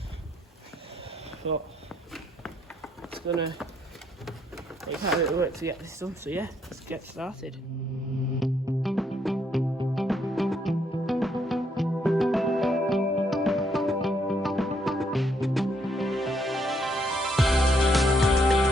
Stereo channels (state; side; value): normal; both; correlation 0.72